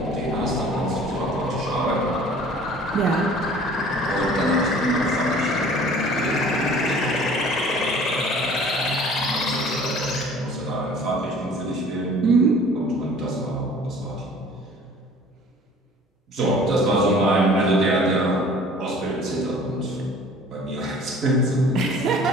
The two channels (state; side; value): normal; both; correlation 0.49